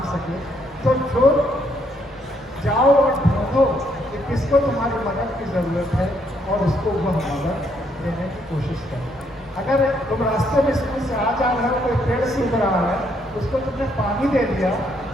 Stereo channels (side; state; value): both; normal; correlation 0.72